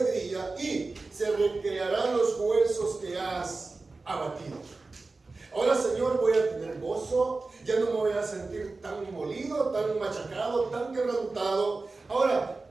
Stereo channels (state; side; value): quieter; left; 3.6 dB